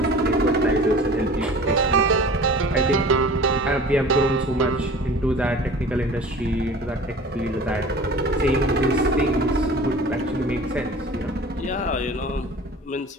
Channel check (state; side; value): normal; both; correlation 0.42